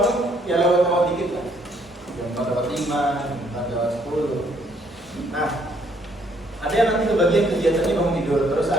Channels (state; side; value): normal; both; correlation 0.67